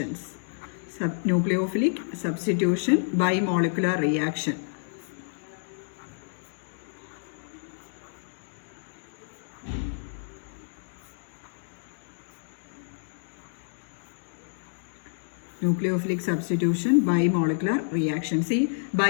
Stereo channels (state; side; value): silent; right; digital silence